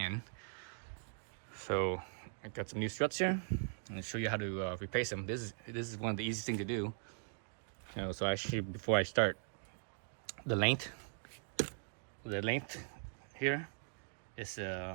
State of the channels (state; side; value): silent; left; digital silence